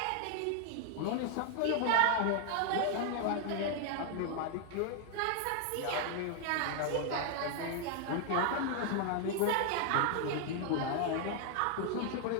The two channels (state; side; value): different; both; correlation 0.00